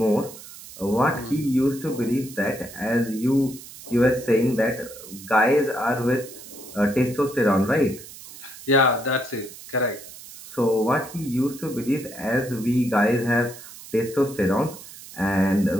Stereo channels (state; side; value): noise; right; hiss, 16 dB below the sound